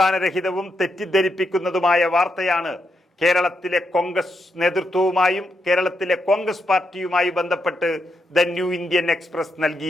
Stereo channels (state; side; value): normal; both; correlation 0.82